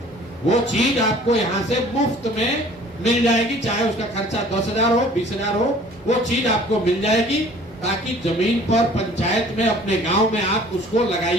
वो चीज आपको यहाँ से मुफ्त में मिल जाएगी। चाहे उसका खर्चा 10,000 हो, 20,000 हो, वो चीज आपको मिल जाएगी, ताकि जमीन पर पंचायत में, अपने गांव में आप उसको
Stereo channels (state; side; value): normal; both; correlation 0.51